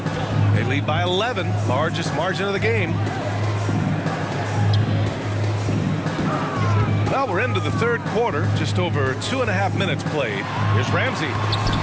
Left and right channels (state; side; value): identical; both; correlation 1.00